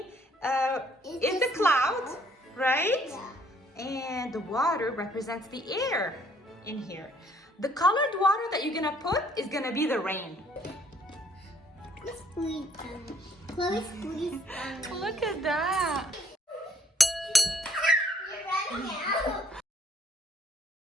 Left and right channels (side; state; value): both; normal; correlation 0.63